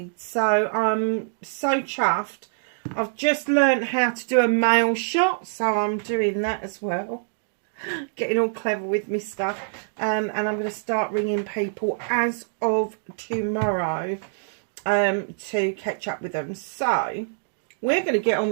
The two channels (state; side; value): silent; left; digital silence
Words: so I'm so chuffed. I've just learned how to do a mail shot, so I'm doing that as well, getting all clever with my stuff, and I'm going to start ringing people as of tomorrow to catch up with them. So we're going to get on